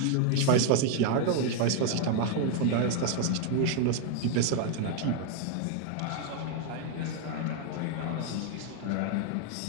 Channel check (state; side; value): different; both; correlation 0.01